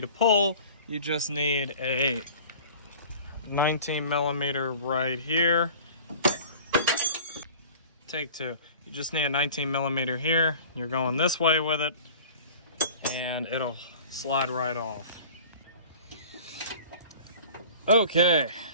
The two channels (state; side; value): inverted; both; correlation -0.43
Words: pull. You just need a 19 millimeter right here. Take two. You just need a 19 millimeter here. You're going this way with it, and it'll slide right off. Okay,